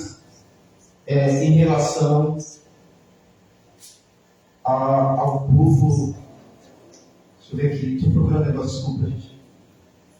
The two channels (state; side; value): identical; both; correlation 1.00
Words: em relação ao povo. Deixa eu ver aqui, estou procurando um negócio, desculpa, gente.